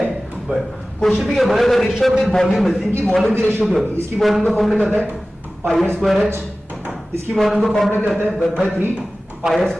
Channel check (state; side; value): normal; both; correlation 0.96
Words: है 1। क्वेश्चन भी क्या बोला, अगर रेशियो ऑफ द वॉल्यूम है, इनकी वॉल्यूम की रेशियो क्या होगी? इसकी वॉल्यूम का फॉर्मूला क्या होता है? Pi square H. इसकी वॉल्यूम का फॉर्मूला क्या होता है? 1/3 पाई